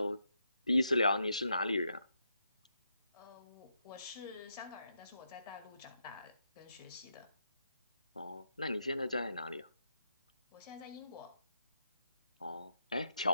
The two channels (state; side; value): inverted; both; correlation -0.82